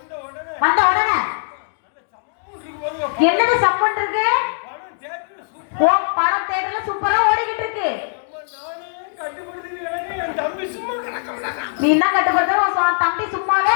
வந்த உடனே என்னது சப்பன் இருக்கு? ஓ படம் தியேட்டர்ல சூப்பரா ஓடிக்கிட்டு இருக்கு. நீ என்ன கட்டுப்படுத்த? உன் தம்பி சும்மாவே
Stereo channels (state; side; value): silent; right; digital silence